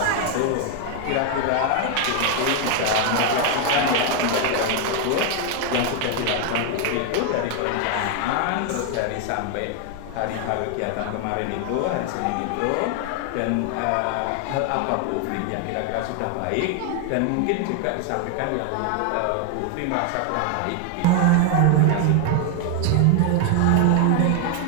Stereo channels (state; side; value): different; both; correlation 0.01